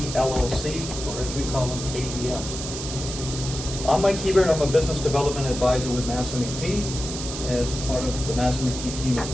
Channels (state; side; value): noise; right; hiss, 7 dB below the sound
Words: LLC, or as we call them, KDM. I'm Mike Hebert. I'm a business development advisor with MassMEP. As part of the MassMEP team, it's